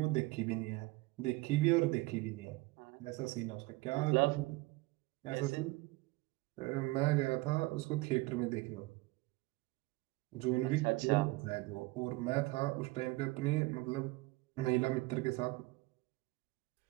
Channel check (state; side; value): quieter; left; 22.0 dB